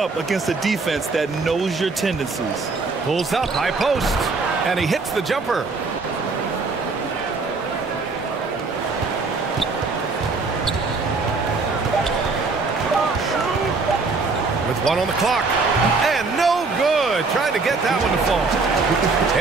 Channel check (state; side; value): quieter; left; 4.1 dB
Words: against a defense that knows your tendencies. Pulls up, high post, and he hits the jumper. With 1 on the clock, and no good. Trying to get that one to fall.